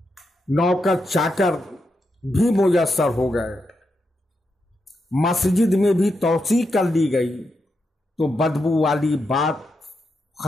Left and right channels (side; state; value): both; normal; correlation 0.85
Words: نوکر چاکر بھی میسر ہو گئے، مسجد میں بھی توسیع کر لی گئی تو بدبو والی بات